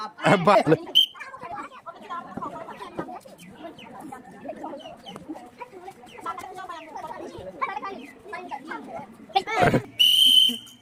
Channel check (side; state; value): both; identical; correlation 1.00